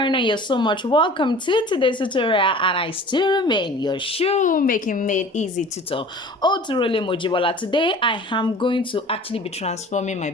foreigner, you're so much welcome to today's tutorial, and I still remain your shoemaking made easy tutor, Oturole Mojibola. Today I am going to actually be transforming my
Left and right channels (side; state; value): both; normal; correlation 0.44